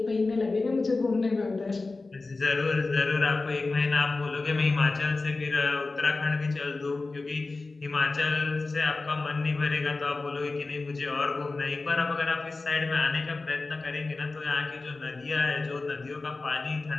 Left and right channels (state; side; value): quieter; right; 3.6 dB